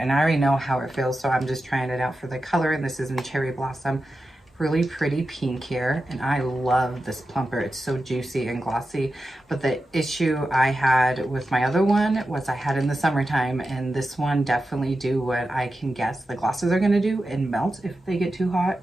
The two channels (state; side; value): normal; both; correlation 0.91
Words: I already know how it feels, so I'm just trying it out for the color. And this is in Cherry Blossom. Really pretty pink here, and I love this plumper. It's so juicy and glossy. But the issue I had with my other one was I had in the summertime, and this one definitely do what I can guess the glosses are going to do and melt if they get too hot.